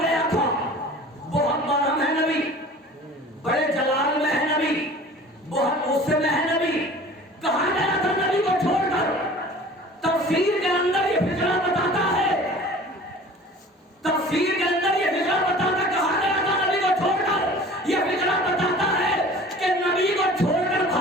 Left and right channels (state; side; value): normal; both; correlation 0.44